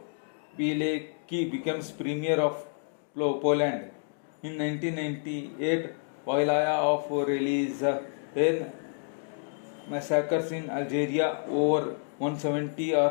Pilecki becomes Premier of Poland. In 1998, Wilaya of Relizane massacres in Algeria. Over 170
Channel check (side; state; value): right; silent; digital silence